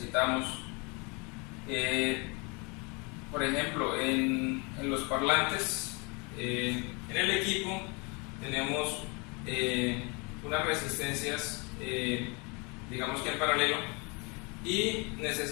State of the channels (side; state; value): right; quieter; 30.6 dB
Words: Por ejemplo, en los parlantes, en el equipo tenemos unas resistencias, digamos que en paralelo, y